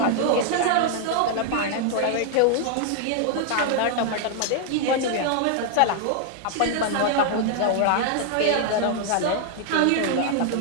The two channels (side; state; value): both; different; correlation 0.00